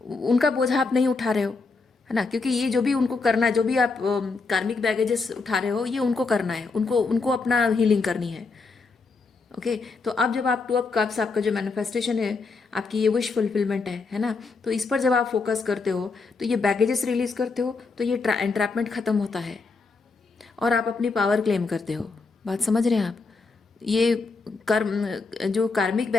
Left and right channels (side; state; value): right; quieter; 4.2 dB